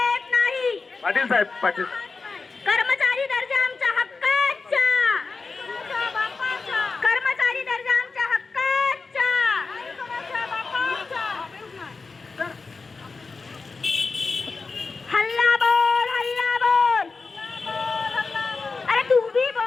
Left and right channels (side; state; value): right; quieter; 4.3 dB